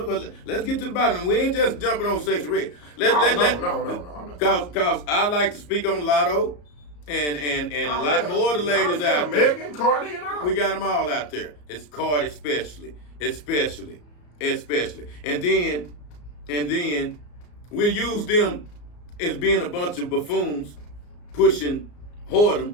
Let's get to the bottom. We ain't just jumping on Sexy Red. No, I'm not. Cause I like to speak on Lotto and a lot more of the ladies out there. Megan, Cardi, and all. We got them all out there. It's Cardi especially. And then we use them as being a bunch of buffoons pushing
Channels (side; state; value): right; late; 34 ms